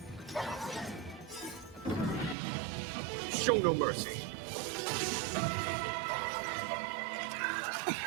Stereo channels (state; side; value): drops out; left; at 2.4 s